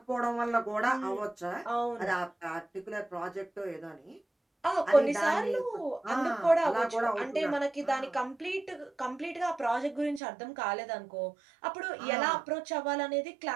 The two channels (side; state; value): left; drops out; at 10.2 s